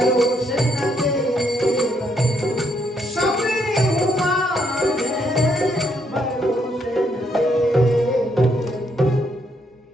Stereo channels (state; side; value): normal; both; correlation 0.74